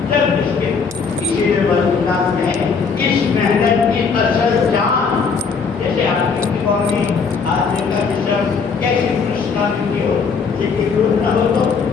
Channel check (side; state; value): right; quieter; 5.4 dB